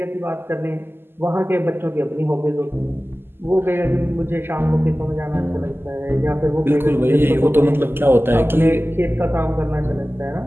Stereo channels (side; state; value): left; late; 0.11 ms